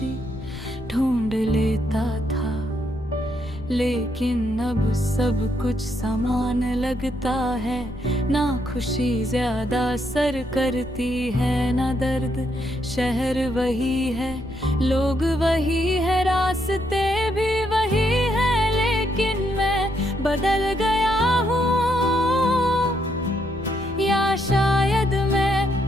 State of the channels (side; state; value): left; noise; rumble, 15 dB below the sound